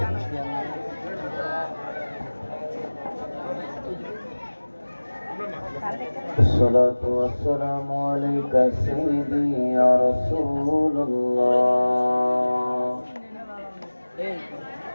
Assalatu wassalamu alayka sayyidi ya Rasulullah.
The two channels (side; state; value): both; inverted; correlation -1.00